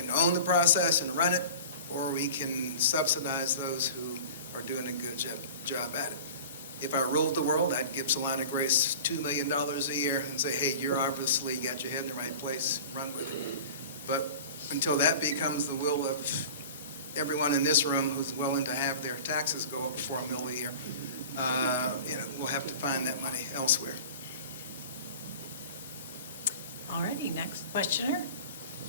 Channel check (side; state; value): both; inverted; correlation -0.39